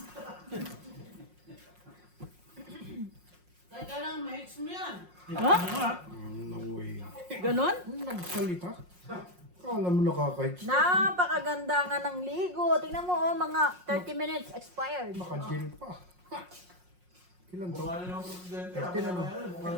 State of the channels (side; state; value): left; late; 5.6 ms